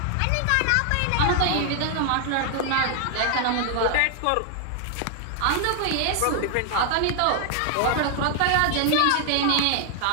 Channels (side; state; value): both; different; correlation 0.00